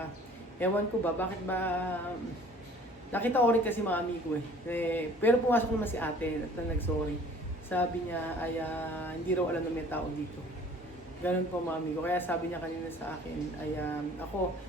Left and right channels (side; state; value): both; normal; correlation 0.51